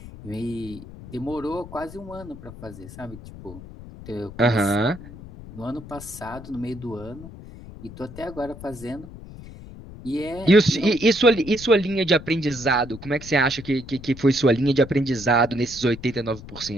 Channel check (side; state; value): left; noise; rumble, 15 dB below the sound